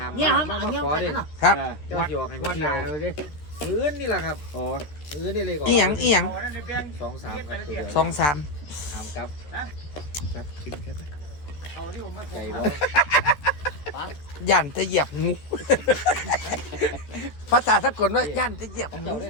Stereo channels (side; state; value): right; late; 13 ms